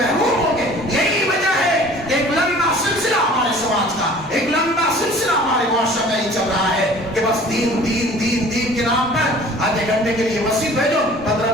ہوں گے. یہی وجہ ہے کہ ایک لمبا سلسلہ ہمارے سماج کا، ایک لمبا سلسلہ ہمارے معاشرہ کا ہی چل رہا ہے کہ بس دین دین دین دین کے نام پر آدھے گھنٹے کے لیے مسجد بھیجو،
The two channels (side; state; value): both; normal; correlation 0.48